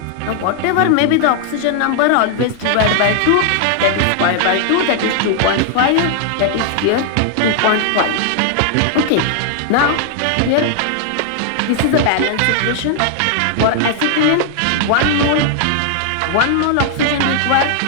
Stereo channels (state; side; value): different; both; correlation 0.00